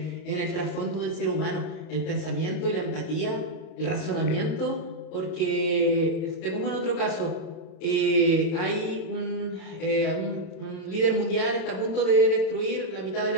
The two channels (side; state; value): right; late; 31 ms